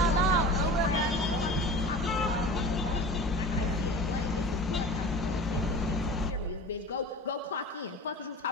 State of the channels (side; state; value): both; normal; correlation 0.37